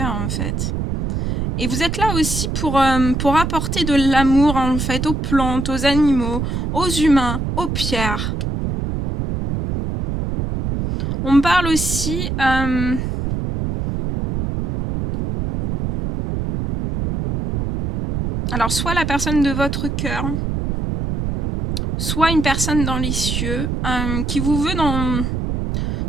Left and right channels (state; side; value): noise; right; rumble, 2 dB below the sound